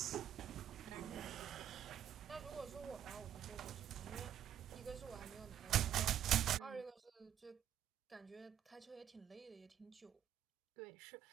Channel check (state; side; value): quieter; left; 10.2 dB